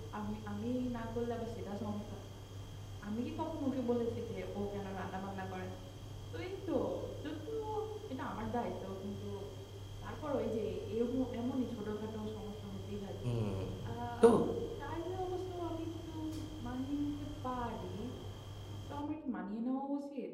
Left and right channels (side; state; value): both; identical; correlation 1.00